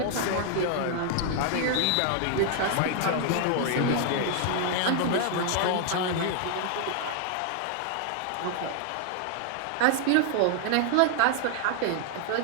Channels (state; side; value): different; both; correlation 0.00